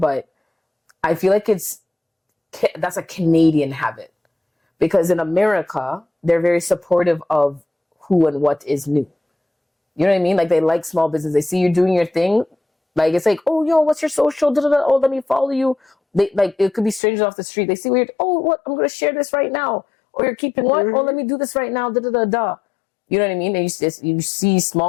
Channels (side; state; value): right; drops out; at 17.0 s